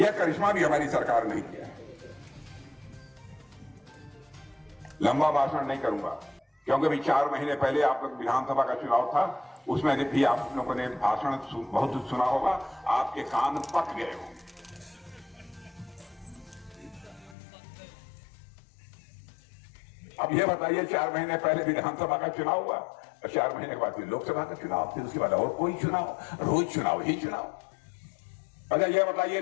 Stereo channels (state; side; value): drops out; right; at 17.4 s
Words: करिश्मा भी हमारी सरकार नहीं किया। लंबा भाषण नहीं करूंगा, क्योंकि अभी 4 महीने पहले आप लोग विधानसभा का चुनाव था, उसमें भी आप लोगों ने भाषण बहुत सुना होगा, आपके कान पक गए होंगे। अब यह बताइए, 4 महीने पहले विधानसभा का चुनाव हुआ और 4 महीने के बाद फिर लोकसभा का चुनाव, फिर उसके बाद और कोई चुनाव, रोज चुनाव ही चुनाव। अच्छा यह बताइए,